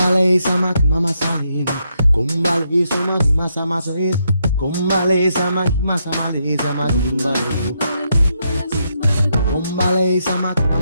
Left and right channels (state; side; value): inverted; both; correlation -0.79